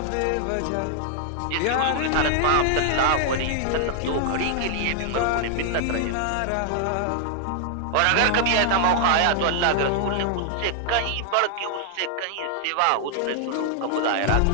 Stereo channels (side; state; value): both; different; correlation 0.00